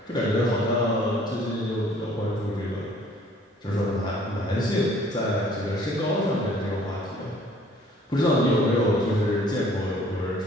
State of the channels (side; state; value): both; normal; correlation 0.57